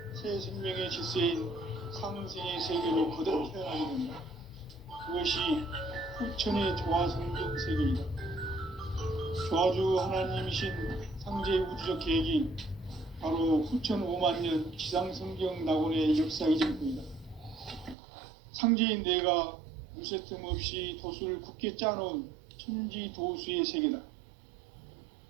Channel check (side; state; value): left; drops out; at 17.9 s